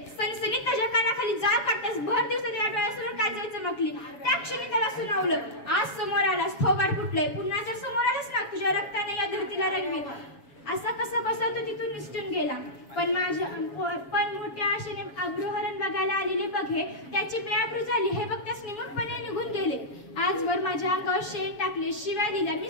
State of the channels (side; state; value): right; late; 7.2 ms